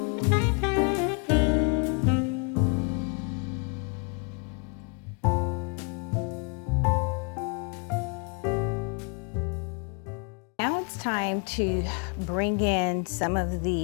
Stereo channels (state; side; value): quieter; right; 36.6 dB